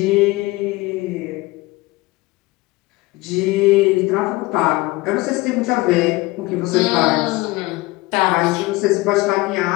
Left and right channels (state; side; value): quieter; right; 21.2 dB